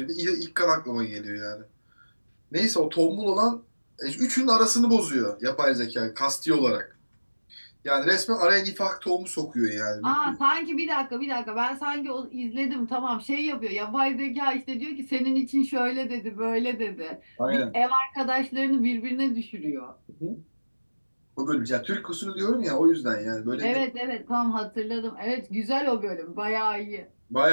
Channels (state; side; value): inverted; both; correlation -1.00